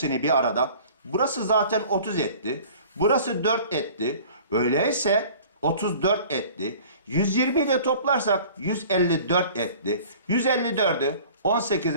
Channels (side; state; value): both; inverted; correlation -0.46